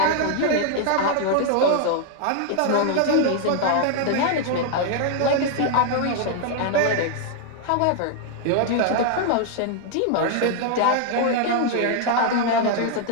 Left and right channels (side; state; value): both; different; correlation 0.00